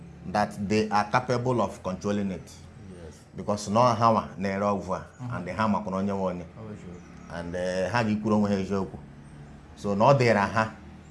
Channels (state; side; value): identical; both; correlation 1.00